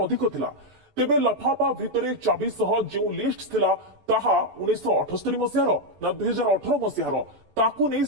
थिला तेबे लफाफा भितर चाबी सह जो लिस्ट थिला ताहा 1978 मसीहार ना 2018 मसीहार ताकू नहीं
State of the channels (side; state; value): left; late; 14 ms